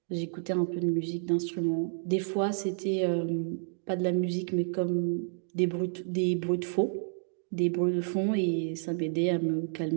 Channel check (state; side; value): silent; left; digital silence